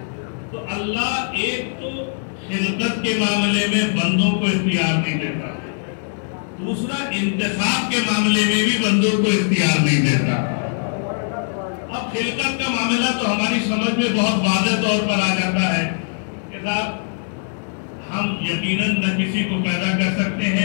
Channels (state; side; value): silent; right; digital silence